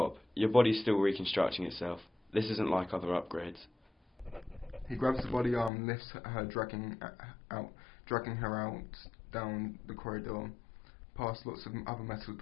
Your body's still reconstructing itself. This isn't like other upgrades. He grabs the body arm and lifts her, dragging her out down the corridor, past lots of other metal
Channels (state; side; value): drops out; right; at 5.7 s